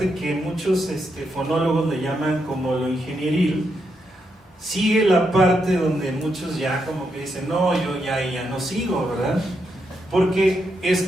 que muchos fonólogos le llaman como lo ingenieril, sigue la parte donde muchos ya como que dicen, no, yo ya no sigo, ¿verdad? Porque es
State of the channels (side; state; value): both; normal; correlation 0.81